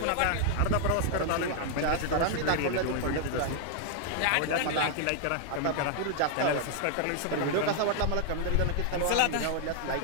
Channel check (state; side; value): different; both; correlation 0.00